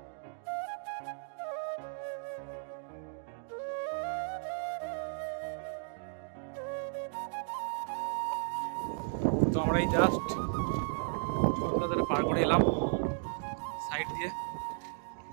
তো আমরা এই জাস্ট টোল প্লাজাটা পার করে এলাম সাইড দিয়ে।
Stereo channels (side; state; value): left; silent; digital silence